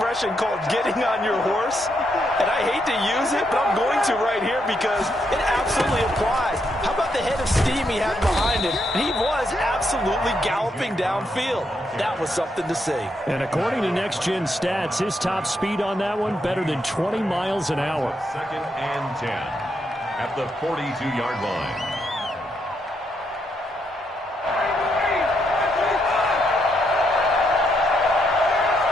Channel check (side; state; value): both; normal; correlation 0.78